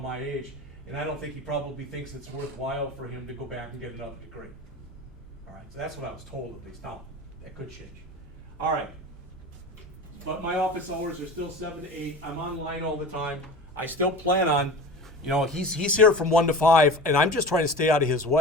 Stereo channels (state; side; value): normal; both; correlation 0.34